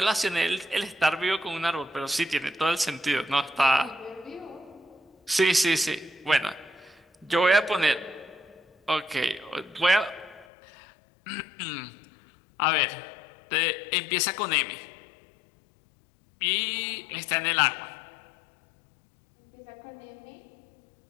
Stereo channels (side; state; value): right; drops out; at 10.5 s